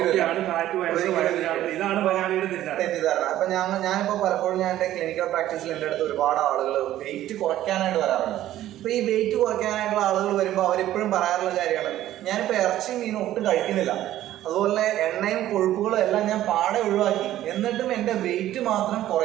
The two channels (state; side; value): quieter; left; 13.4 dB